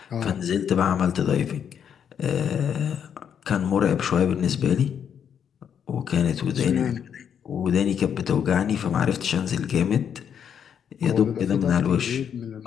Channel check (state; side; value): quieter; right; 8.2 dB